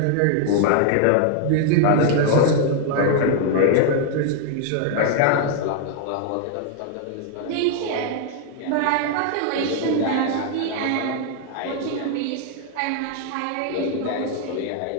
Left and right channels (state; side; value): different; both; correlation 0.00